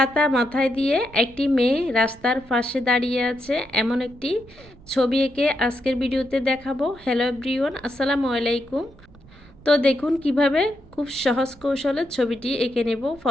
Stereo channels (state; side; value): noise; right; rumble, 24 dB below the sound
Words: মাথায় দিয়ে একটি মেয়ে রাস্তার পাশে দাঁড়িয়ে আছে এমন একটি ছবি এঁকে আজকের ভিডিওতে দেখাবো। হ্যালো এভরিওয়ান, আসসালামু আলাইকুম। তো দেখুন কিভাবে খুব সহজ কৌশলে ছবিটি এঁকে নেব।